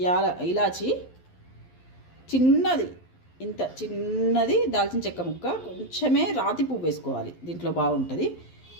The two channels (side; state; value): right; late; 11 ms